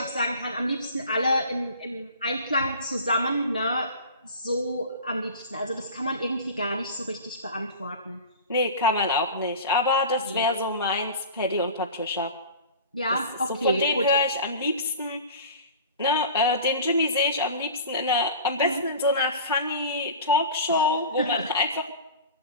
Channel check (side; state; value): both; inverted; correlation -0.37